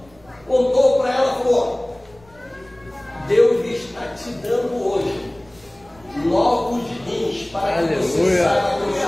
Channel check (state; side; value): noise; left; rumble, 28 dB below the sound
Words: contou para ela, falou: Deus está te dando hoje novos rins para que você saiba que eu